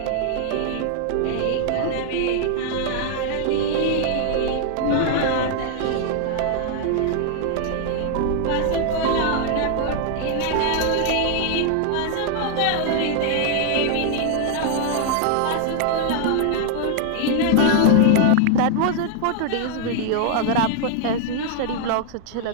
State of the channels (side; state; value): both; different; correlation 0.00